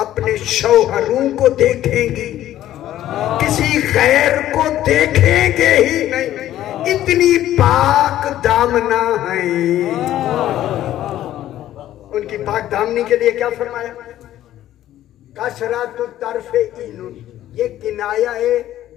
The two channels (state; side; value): quieter; right; 13.0 dB